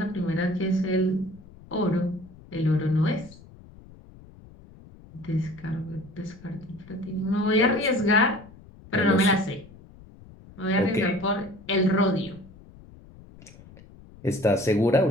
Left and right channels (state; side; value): noise; left; rumble, 21 dB below the sound